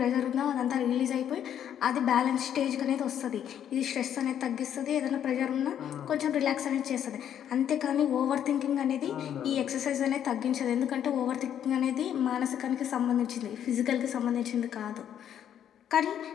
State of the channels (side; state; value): right; quieter; 9.7 dB